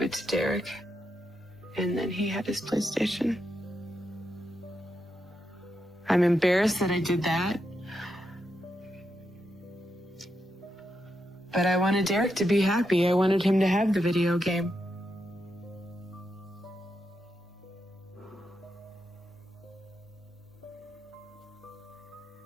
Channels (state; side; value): normal; both; correlation 0.84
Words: it to Derek. And then he had his PlayStation. I'm embarrassed that I did that. But I wanted Derek to be happy. I wanted him to have the video game.